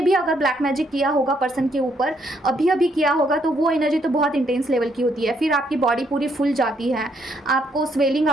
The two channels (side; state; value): both; normal; correlation 0.72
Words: भी अगर ब्लैक मैजिक किया होगा पर्सन के ऊपर, अभी किया होगा, तो वो एनर्जी तो बहुत इंटेंस लेवल की होती है। फिर आपकी बॉडी पूरी फुल जाती है, आपको स्वेलिंग